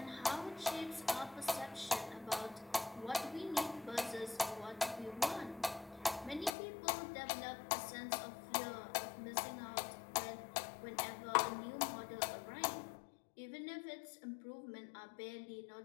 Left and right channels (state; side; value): drops out; right; at 6.6 s